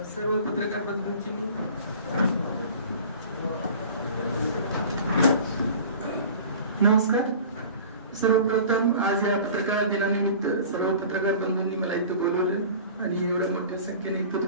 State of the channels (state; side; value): inverted; both; correlation -0.42